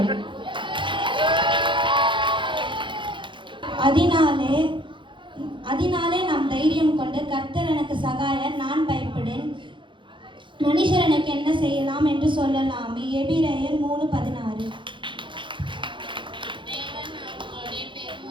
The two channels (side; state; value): left; late; 0.23 ms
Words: அதனாலே நாம் தைரியம் கொண்டு கர்த்தர் எனக்கு சகாயர், நான் பயப்படேன், மனுஷர் எனக்கு என்ன செய்யலாம் என்று சொல்லலாமே. எபிரேயர் 3:16. தேவன் அவர்களுடைய